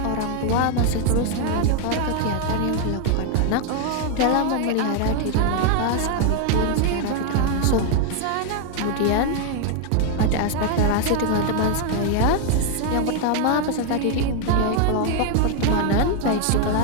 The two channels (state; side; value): different; both; correlation 0.00